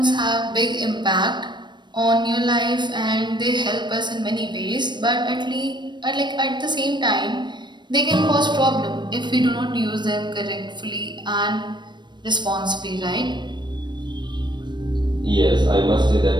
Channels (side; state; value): left; late; 0.22 ms